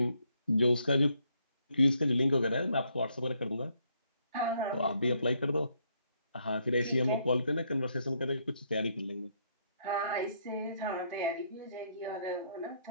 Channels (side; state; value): both; inverted; correlation -0.72